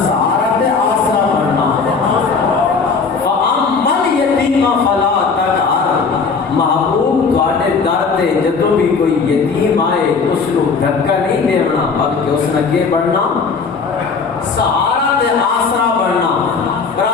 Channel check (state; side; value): quieter; right; 5.0 dB